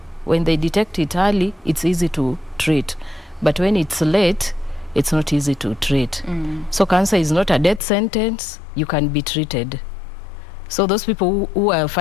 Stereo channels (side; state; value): right; drops out; at 7.8 s